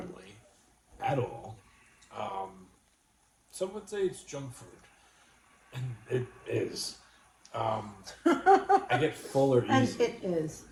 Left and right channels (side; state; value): both; identical; correlation 1.00